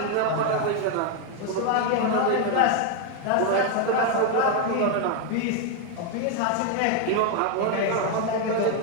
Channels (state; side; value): different; both; correlation 0.01